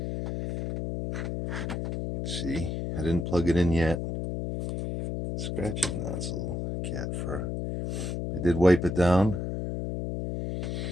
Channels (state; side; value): noise; left; hum, 3 dB below the sound